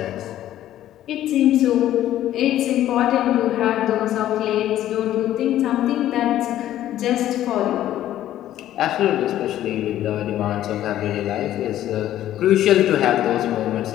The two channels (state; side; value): quieter; right; 12.7 dB